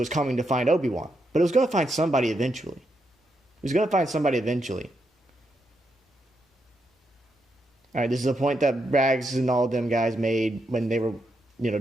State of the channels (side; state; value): both; normal; correlation 0.82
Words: coming to find Obi-Wan. But it was going to find somebody eventually. It was going to find somebody eventually. All right, this is a point that Rags and all of them guys made when they were,